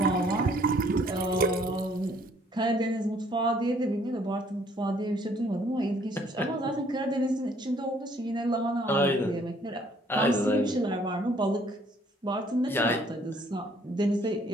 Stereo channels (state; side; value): normal; both; correlation 0.62